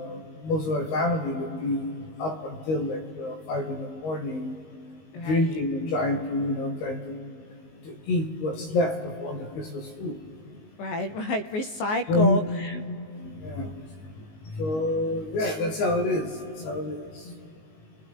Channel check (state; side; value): late; right; 19 ms